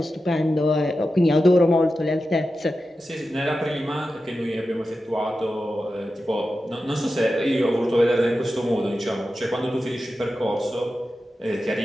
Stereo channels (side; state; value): both; normal; correlation 0.92